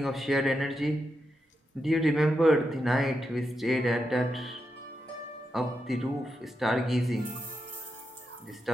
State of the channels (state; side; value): normal; both; correlation 0.86